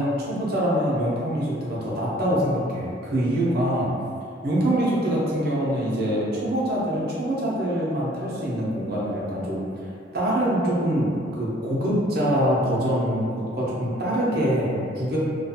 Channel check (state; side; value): normal; both; correlation 0.56